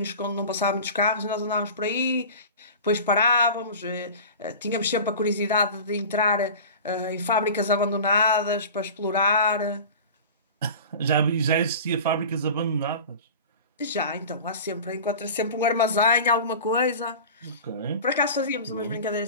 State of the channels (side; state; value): both; inverted; correlation -0.35